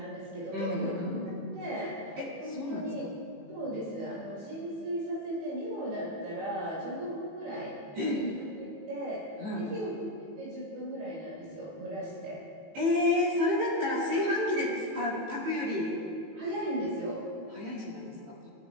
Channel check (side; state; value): left; late; 18 ms